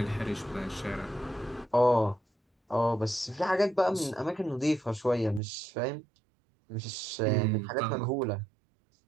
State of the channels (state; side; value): drops out; left; at 5.4 s